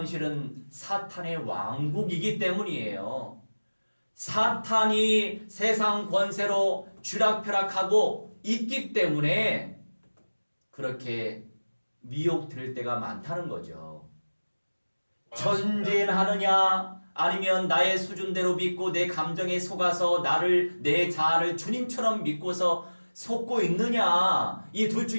사탄의 왕국이기 때문이에요. 사탄이 세상 권세로 쥐락펴락하고 있기 때문에 그렇게 미혹될 때가 많다는 거죠. 전진하느냐 아니면 나의 수준대로 믿고 내 감정에 속아서 내 자아를 주님처럼 믿고서 속고 있느냐, 이 둘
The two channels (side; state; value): both; inverted; correlation -1.00